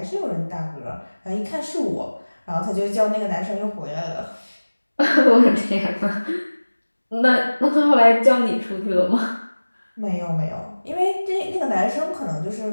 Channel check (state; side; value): inverted; both; correlation -1.00